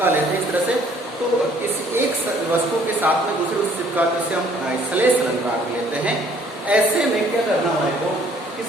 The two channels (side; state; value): both; normal; correlation 0.60